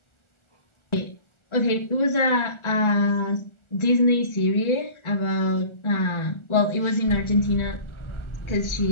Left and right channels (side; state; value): right; late; 1.4 ms